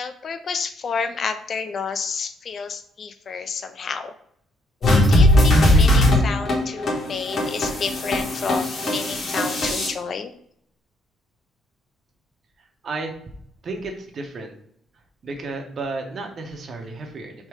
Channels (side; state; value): both; normal; correlation 0.70